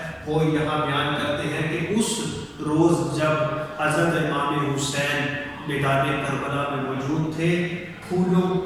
وہ یہاں بیان کرتے ہیں کہ اس روز جب حضرت امام حسین میدان کربلا میں موجود تھے، پھولوں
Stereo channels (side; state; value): both; identical; correlation 1.00